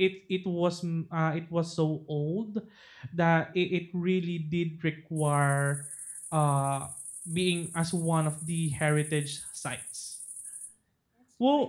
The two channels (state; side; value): identical; both; correlation 1.00